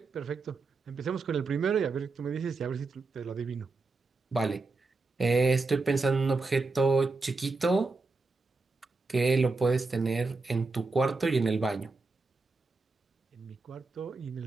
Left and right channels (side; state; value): left; quieter; 3.8 dB